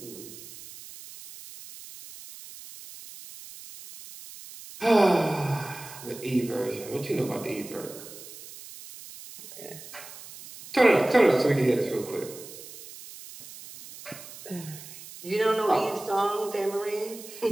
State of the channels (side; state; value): right; noise; hiss, 15 dB below the sound